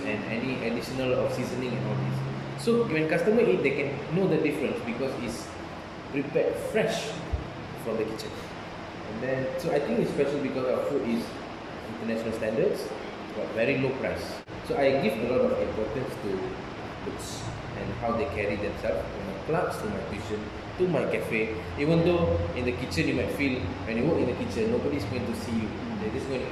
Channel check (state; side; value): identical; both; correlation 1.00